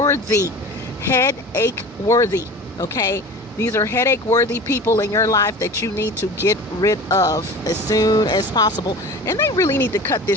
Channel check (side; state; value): both; normal; correlation 0.37